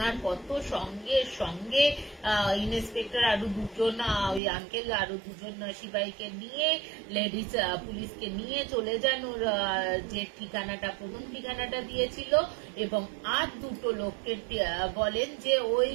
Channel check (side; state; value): left; drops out; at 4.4 s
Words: পর তো সঙ্গে সঙ্গে ইন্সপেক্টর আরো দুজন, ওই আঙ্কেল আরো দুজন সিপাহীকে নিয়ে, লেডিস পুলিশকে নিয়ে চলে যান ওর যে ঠিকানাটা, প্রথম ঠিকানাটা দিয়েছিল, এবং আর দুটো লোককে বলেন যে ওই